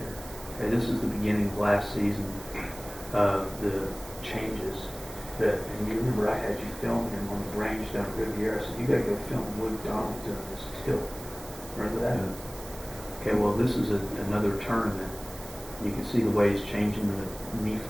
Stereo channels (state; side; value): noise; right; hiss, 17 dB below the sound